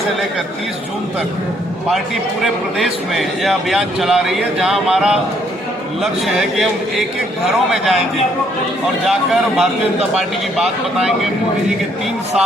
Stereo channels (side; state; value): both; normal; correlation 0.68